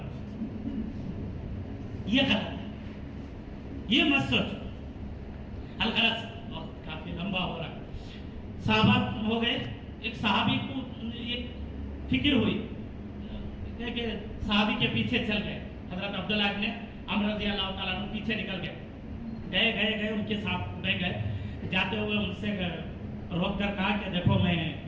یہ غلط ہے، یہ مت سوچو۔ الغرض وقت کافی لمبا ہو رہا ہے، صحابہ ہو گئے، ایک صحابی کو ایک فکر ہوئی کہ صحابی کے پیچھے چل گئے، حضرت عبداللہ ابن عمر رضی اللہ تعالیٰ عنہ پیچھے نکل گئے، ان کے ساتھ رہ گئے، جاتے ہوئے ان سے روک کر کہا کہ دیکھو میں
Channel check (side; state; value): both; identical; correlation 1.00